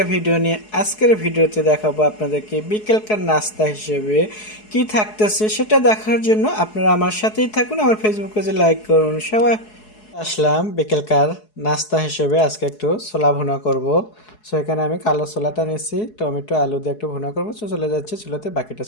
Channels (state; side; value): late; right; 4.7 ms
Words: ভিডিও নিয়ে। আজকের ভিডিওতে দেখাবো আপনাদেরকে বিকেলকার নাস্তা হিসেবে কি থাকতেছে সেটা দেখার জন্য আপনারা আমার সাথেই থাকুন। আমার ফেসবুক পেজে লাইক করুন। সবাই আসলাম বিকেলকার নাস্তা হিসেবে আজকে একটু ছোলা ভুনা করব। সো এখানে আমি কালো ছোলাটা নিয়েছি, টমেটো আলু দিয়ে একটু ভুনা করবো। সো চলে যাচ্ছে চুলোতে, বাকিটা